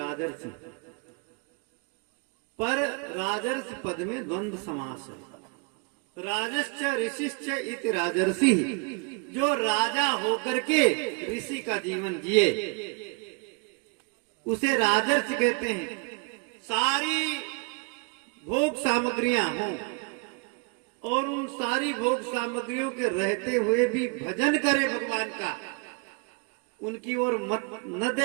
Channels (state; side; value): quieter; left; 33.9 dB